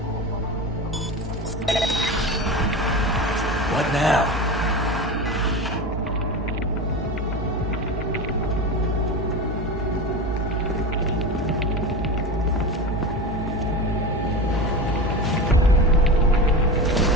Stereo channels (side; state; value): both; normal; correlation 0.25